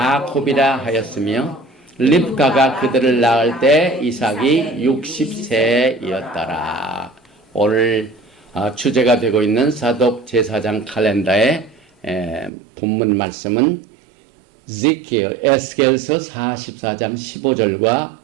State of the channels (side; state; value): left; drops out; at 12.5 s